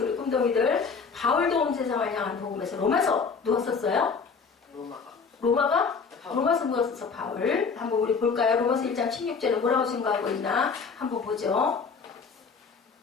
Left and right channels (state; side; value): quieter; right; 5.3 dB